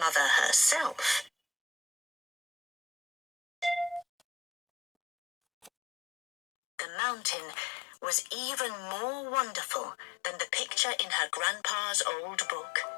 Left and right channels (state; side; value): drops out; right; at 5.7 s